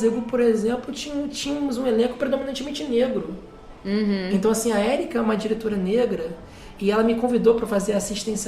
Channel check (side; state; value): both; identical; correlation 1.00